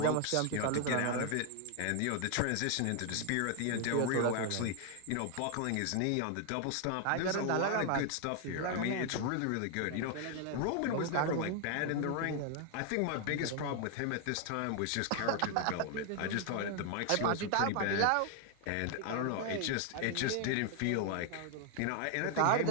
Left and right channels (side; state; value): both; different; correlation 0.00